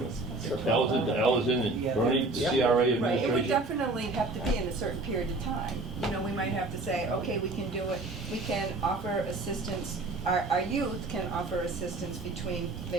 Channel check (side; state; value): left; quieter; 3.1 dB